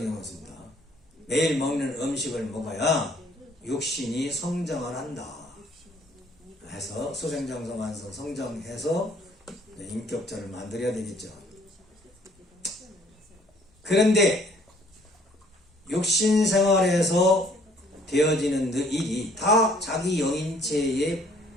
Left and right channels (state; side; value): normal; both; correlation 0.59